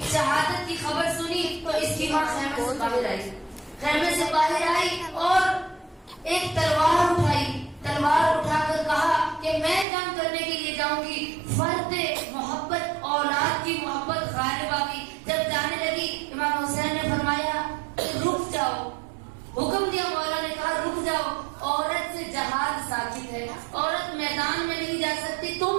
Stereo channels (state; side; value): drops out; left; at 9.9 s